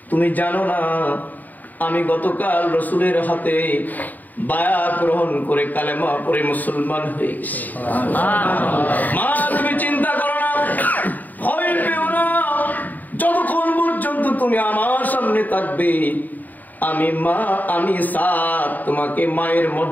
তুমি জানো না আমি গতকাল রাসূলের হাতে বায়াত গ্রহণ করে কালেমা পড়ে মুসলমান হয়ে গেছি। মা তুমি চিন্তা করো না, ভয় পেও না, যতক্ষণ পর্যন্ত তুমি আমার সামনে থাকবে, আমি মা, আমি সাদ তোমাকে মায়ের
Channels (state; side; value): late; right; 0.084 ms